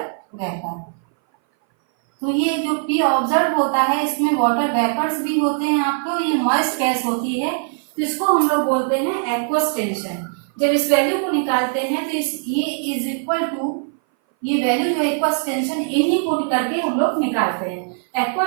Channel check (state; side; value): silent; left; 59 dB below the other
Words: वेपर। तो ये जो P ऑब्जर्व होता है, इसमें वाटर वेपर्स भी होते हैं आपको, ये मॉइस्ट गैस होती है, तो इसको हम लोग बोलते हैं एक्वस टेंशन। जब इस वैल्यू को निकालते हैं तो ये इज इक्वल टू, ये वैल्यू जो एक्वस टेंशन, इन्हीं को करके हम लोग निकालते हैं।